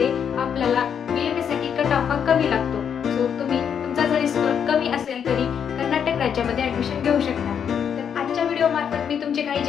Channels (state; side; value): quieter; right; 7.9 dB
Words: आपल्याला BMS साठी कट ऑफ हा कमी लागतो. सो तुम्ही तुमचा जरी स्कोअर कमी असेल तरी कर्नाटक राज्यामध्ये ॲडमिशन घेऊ शकता. तर आजच्या व्हिडिओमार्फत मी तुमचे काही